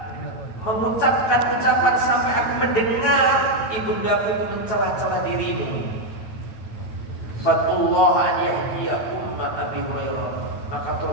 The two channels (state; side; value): late; right; 9.3 ms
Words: mengucapkan ucapan sampai aku mendengar ibundaku itu mencela-cela dirimu. Fatullah an yahdiya umma Abi Hurairah. Maka